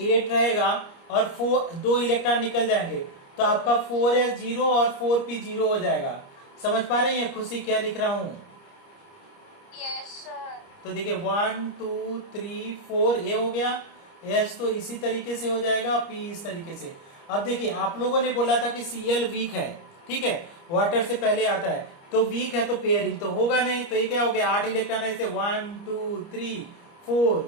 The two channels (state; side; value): late; right; 30 ms